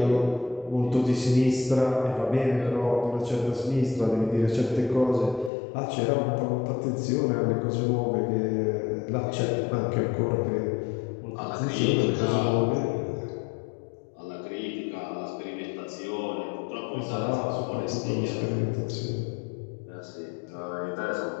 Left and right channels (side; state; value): right; drops out; at 5.5 s